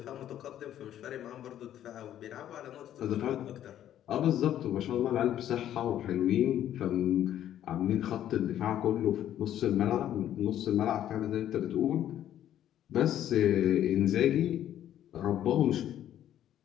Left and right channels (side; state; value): right; quieter; 11.4 dB